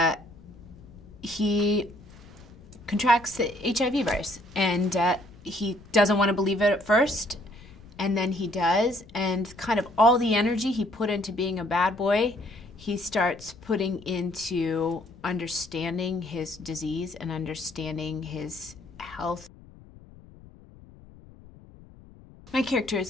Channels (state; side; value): noise; left; rumble, 22 dB below the sound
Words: he contracts the HIV virus. And he doesn't want to believe it at first. And then he does, and kind of all the energy he put into being a bad boy, he starts putting into understanding his disease and understanding his health. My character